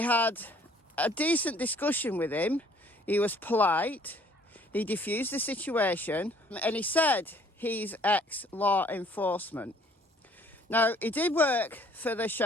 had a decent discussion with him. He was polite. He diffused the situation, and he said he's ex-law enforcement. Now, he did work for the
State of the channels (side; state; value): both; normal; correlation 0.58